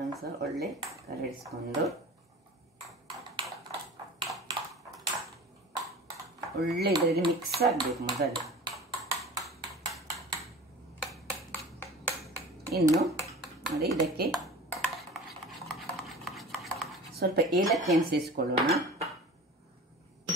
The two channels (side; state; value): both; normal; correlation 0.39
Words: ಸಹ ಒಳ್ಳೆ ಕಲರಿಸಿಕೊಂಡು ಒಳ್ಳೆ ಇದರಲ್ಲಿ ಮಿಕ್ಸ್ ಆಗಬೇಕು ಮೊದಲು. ಇನ್ನು ನೋಡಿ, ಇದಕ್ಕೆ ಸ್ವಲ್ಪ ಏಲಕ್ಕಿಯನ್ನು ಸೇರಿಸಿಕೊಳ್ಳೋಣ.